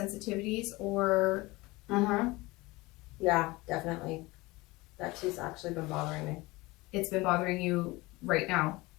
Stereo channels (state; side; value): quieter; right; 21.8 dB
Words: or? Yeah, definitely. That tooth's actually been bothering me. It's been bothering you right now?